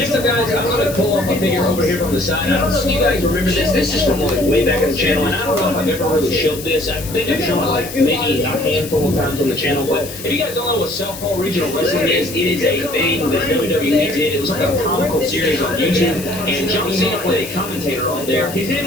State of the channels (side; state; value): left; noise; hiss, 13 dB below the sound